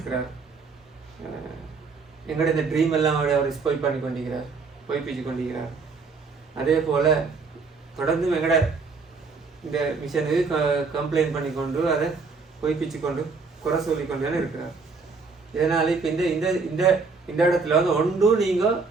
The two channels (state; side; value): quieter; left; 4.5 dB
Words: எங்களோட இந்த ட்ரீம் எல்லாம் அவர் ஸ்பாயில் பண்ணி கொண்டிருக்கிறார், பொய்ப்பிச்சு கொண்டிருக்கிறார். அதே போல் தொடர்ந்து எங்களோட இந்த மிஷனுக்கு கம்ப்ளைண்ட் பண்ணி கொண்டு அதை பொய்ப்பிச்சு கொண்டு குறை சொல்லிக்கொண்டு தானே இருக்கிறார். இதனால் இப்போ இந்த இந்த இந்த இந்த இடத்துல வந்து ஒன்றும் நீங்கள்